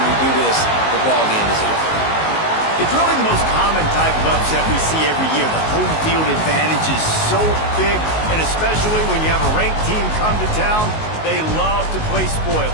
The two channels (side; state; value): right; late; 19 ms